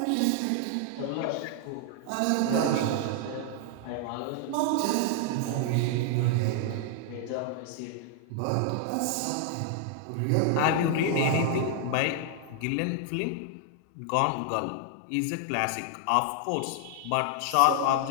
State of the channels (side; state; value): both; different; correlation 0.00